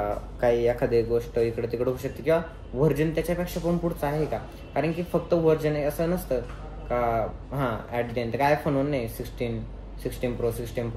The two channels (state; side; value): identical; both; correlation 1.00